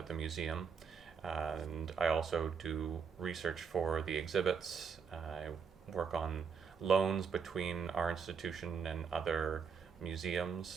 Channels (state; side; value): quieter; left; 6.2 dB